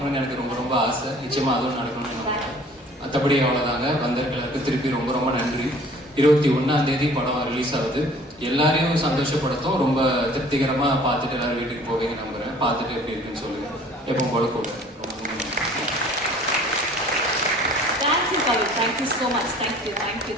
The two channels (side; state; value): both; normal; correlation 0.51